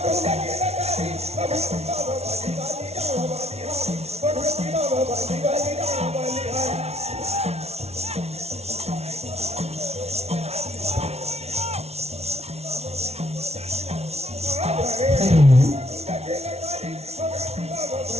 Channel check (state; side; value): late; left; 0.31 ms